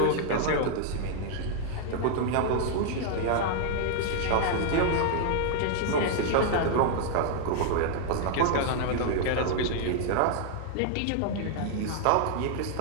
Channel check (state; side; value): different; both; correlation 0.00